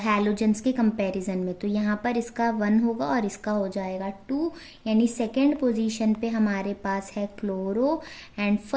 के कंपैरिजन में। तो यहाँ पर इसका 1 होगा और इसका हो जाएगा 2, यानी सेकेंड पोजीशन पे हमारे पास है क्लोरो एंड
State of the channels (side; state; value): both; identical; correlation 1.00